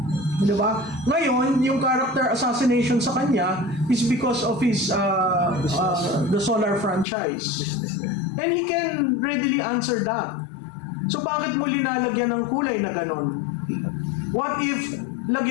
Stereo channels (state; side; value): drops out; right; at 7.1 s